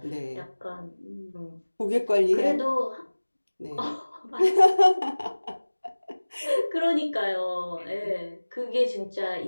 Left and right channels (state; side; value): inverted; both; correlation -1.00